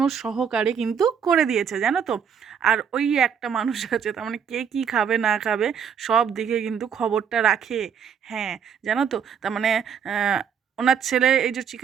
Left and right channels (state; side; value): quieter; left; 7.5 dB